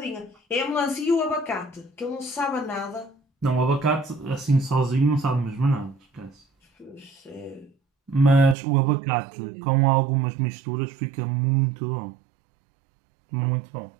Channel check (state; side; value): drops out; left; at 8.6 s